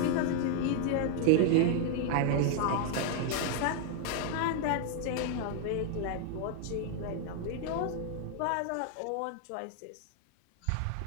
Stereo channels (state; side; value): different; both; correlation 0.00